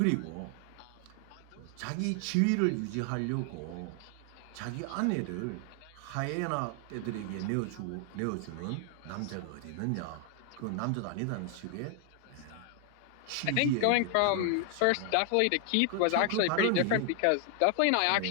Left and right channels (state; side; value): different; both; correlation 0.00